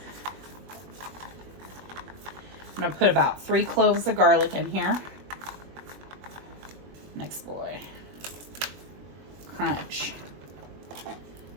I'm gonna put about 3 cloves of garlic in here. Next boy. Crunch.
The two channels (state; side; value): late; left; 21 ms